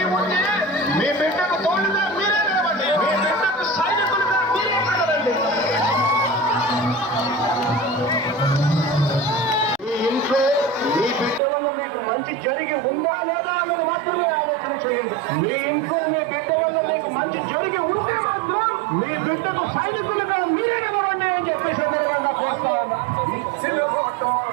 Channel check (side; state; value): left; drops out; at 11.4 s